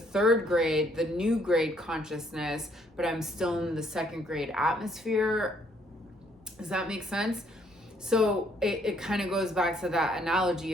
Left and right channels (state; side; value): normal; both; correlation 0.67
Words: third grade, the new grade consciousness, but I'm still in the second grade atmosphere. Does that make sense? So it kind of goes back to that analogy